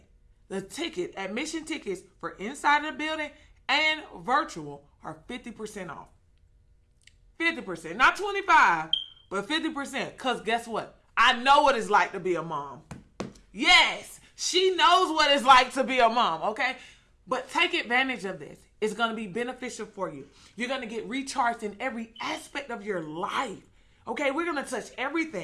the admission tickets for inside of the building and virtual are 50% off. 50%, not 25, but 50%. Because guess what? I know what it's like to be a mom. Yes, she knows what it's like to be a mom, okay? But take advantage of this. It's going to be beneficial for you. You're going to get recharged in every aspect of your life. Okay, we're going to touch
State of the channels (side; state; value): both; identical; correlation 1.00